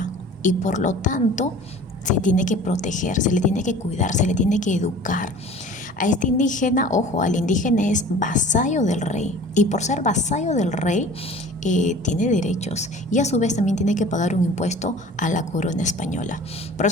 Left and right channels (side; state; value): both; normal; correlation 0.44